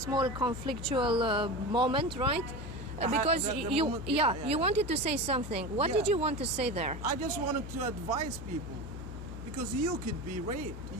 conflictual moment, right? Because you wanted to say something. What did you want to say there? I just wanted to advise people, because you could be raped.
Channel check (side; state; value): left; noise; hum, 9 dB below the sound